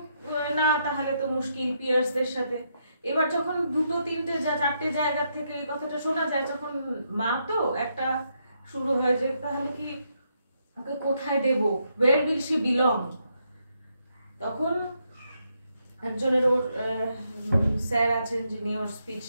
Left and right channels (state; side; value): inverted; both; correlation -0.78